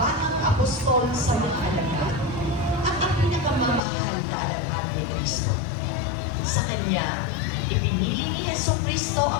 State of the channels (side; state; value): right; drops out; at 3.8 s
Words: apostol sa mga alagad at ang pinakamamahal na alagad ni Kristo. Sa kanya, ipinili ni Jesucristo